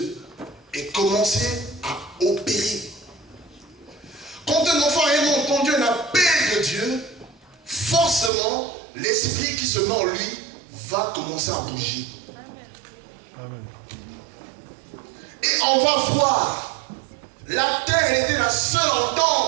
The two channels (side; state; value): left; drops out; at 8.3 s